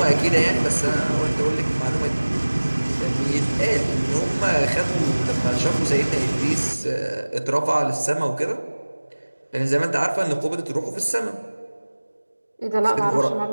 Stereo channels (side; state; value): both; inverted; correlation -1.00